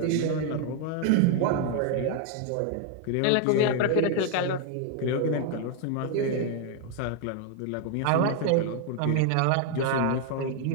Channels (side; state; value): both; different; correlation 0.00